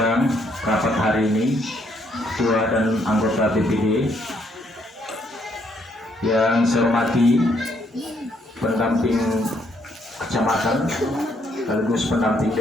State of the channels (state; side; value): normal; both; correlation 0.71